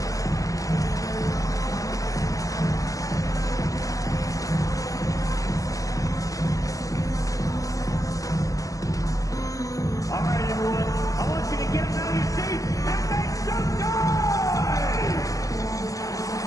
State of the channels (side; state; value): right; late; 0.17 ms